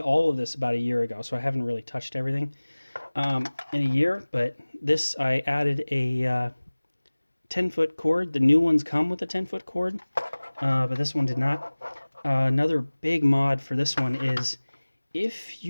of this about a year ago, so I haven't really touched everything in a year. But this, I added a 10-foot cord. The new ones come with a 10-foot cord, but this one did not. Another big mod for this one is if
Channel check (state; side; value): inverted; both; correlation -1.00